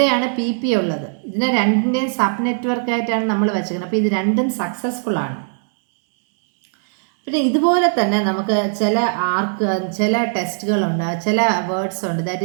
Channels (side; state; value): left; silent; 65 dB below the other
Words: PP ഉള്ളത്. ഇതിനെ രണ്ടിൻ്റെയും സബ് നെറ്റ്വർക്കായിട്ടാണ് നമ്മൾ വെച്ചിരിക്കുന്നത്. അപ്പോൾ ഇത് രണ്ടും സക്സസ്ഫുൾ ആണ്. പിന്നെ ഇതുപോലെ തന്നെ നമുക്ക് ചില ടെസ്റ്റുകളുണ്ട്, ചില വേർഡ്സ് ഉണ്ട്. That